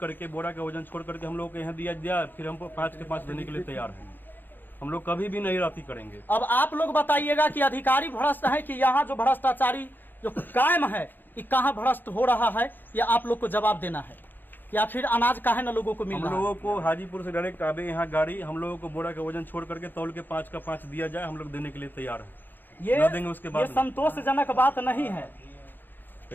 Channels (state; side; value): late; right; 0.091 ms